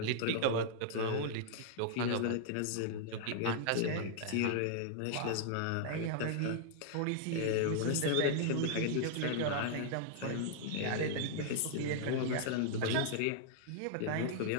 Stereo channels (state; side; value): different; both; correlation -0.01